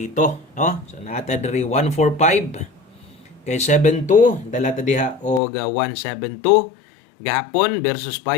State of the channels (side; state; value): right; drops out; at 5.4 s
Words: no. So nata diri 1-4-5 kay 7-2 dala ta diha og 1-7-2 gahapon versus